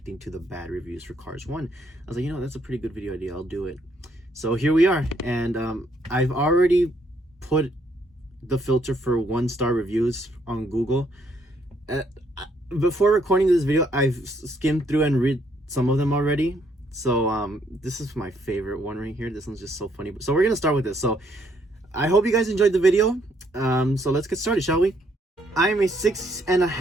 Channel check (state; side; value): normal; both; correlation 0.70